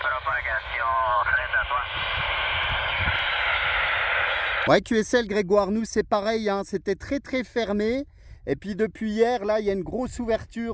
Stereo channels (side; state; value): both; identical; correlation 1.00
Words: Ouais, QSL, Grégoire, nous c'est pareil, hein, c'était très fermé. Et puis depuis hier, là, il y a une grosse